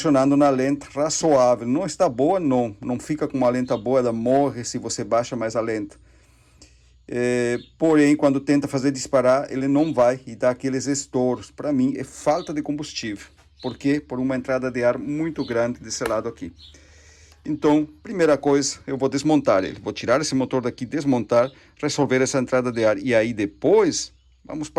na lenta razoável. Não está boa, não fica com uma lenta boa, ela morre se você baixa mais a lenta. Porém, quando tenta fazer disparar, ele não vai e dá aqueles estouros. Para mim, é falta de combustível. Por quê? Por uma entrada de ar muito grande desse lado aqui. Então, primeira coisa, eu vou desmontar ele. Vou tirar esse motor daqui, desmontar, resolver essa entrada de ar. E aí depois, vamos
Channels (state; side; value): identical; both; correlation 1.00